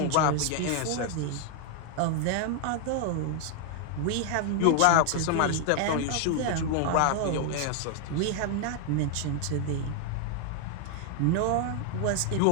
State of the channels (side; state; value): both; different; correlation 0.00